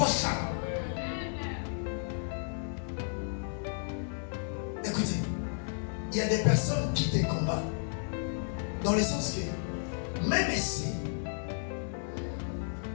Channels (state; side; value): silent; right; 56 dB below the other